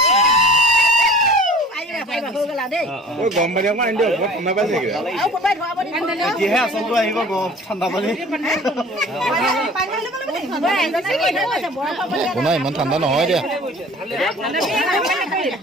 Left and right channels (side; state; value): both; normal; correlation 0.46